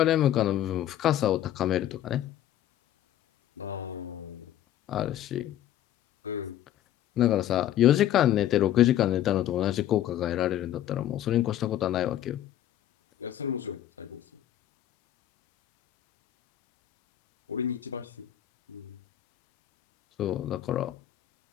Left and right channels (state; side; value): quieter; right; 12.0 dB